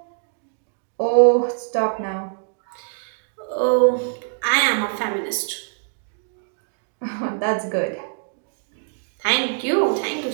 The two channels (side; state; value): left; silent; digital silence